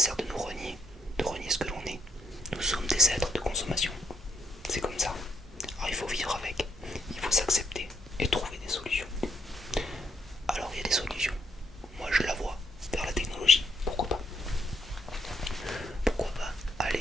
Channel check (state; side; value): normal; both; correlation 0.72